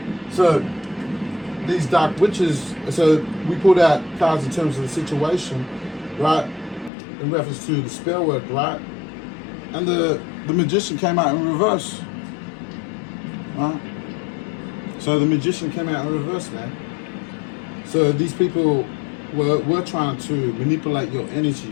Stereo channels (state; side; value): drops out; right; at 6.9 s